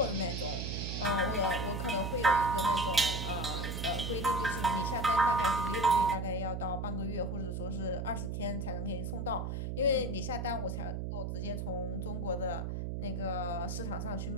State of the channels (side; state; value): right; noise; hum, 3 dB below the sound